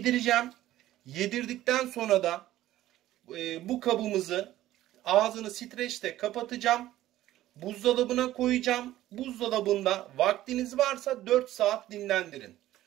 Yedirdikten sonra da bu kabımızı ağzını streçle kapatacağım. Buzdolabına koyacağım. Buzdolabında vaktiniz varsa 4 saat dinlendirin.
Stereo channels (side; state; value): left; quieter; 14.4 dB